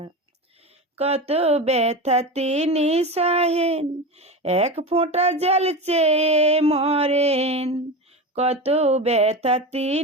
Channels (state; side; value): normal; both; correlation 0.24